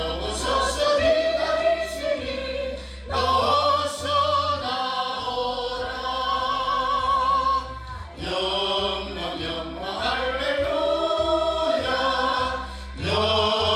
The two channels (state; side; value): identical; both; correlation 1.00